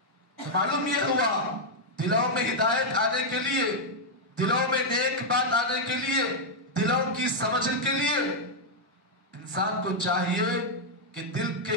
تو معلوم یہ ہوا دلوں میں ہدایت آنے کے لیے، دلوں میں نیک بات آنے کے لیے، دلوں کی سمجھ کے لیے انسان کو چاہیے کہ دل کے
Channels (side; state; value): both; normal; correlation -0.03